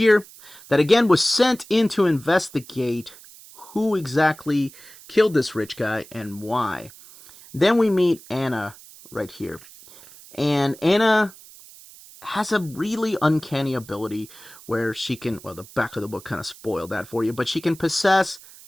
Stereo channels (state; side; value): noise; right; hiss, 20 dB below the sound